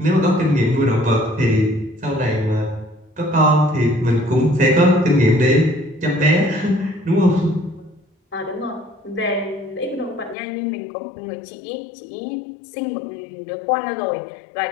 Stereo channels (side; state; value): right; drops out; at 10.4 s